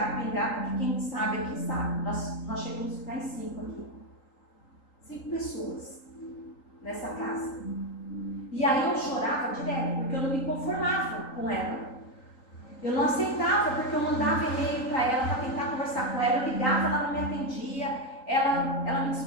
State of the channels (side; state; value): right; late; 3.8 ms